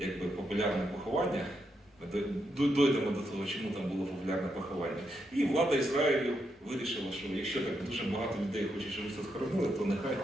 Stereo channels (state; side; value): normal; both; correlation 0.82